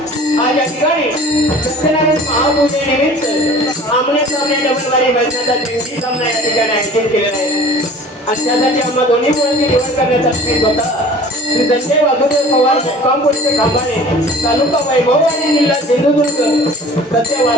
आज या ठिकाणी सत्यनारायण महापूजेनिमित्त आमने सामने डबलवारी भजनाचा दिवशी सामना या ठिकाणी आयोजित केलेला आहे. आणि त्यासाठी आम्हा दोन्ही मुलांची निवड करण्याचा स्थित होता. श्री संजय वाघोदेव पवार मुक्काम पोस्ट खांबाणे तालुका वैभववाडी जिल्हा सिंधुदुर्ग सध्या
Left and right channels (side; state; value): both; normal; correlation 0.45